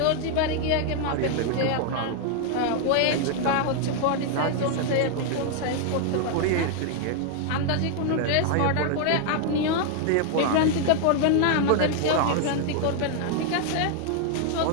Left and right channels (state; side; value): different; both; correlation 0.00